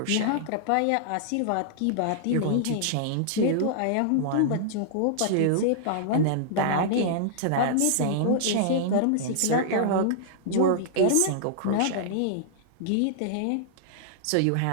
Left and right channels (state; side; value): different; both; correlation -0.01